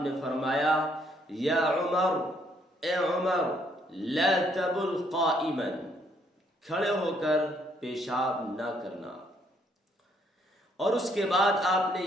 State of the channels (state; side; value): normal; both; correlation 0.69